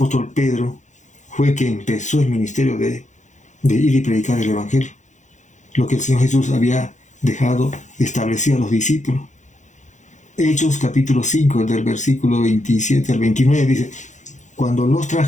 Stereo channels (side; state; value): right; late; 0.35 ms